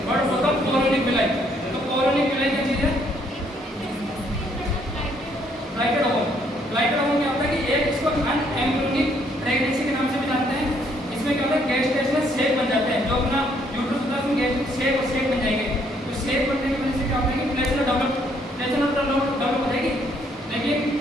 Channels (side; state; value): both; normal; correlation 0.68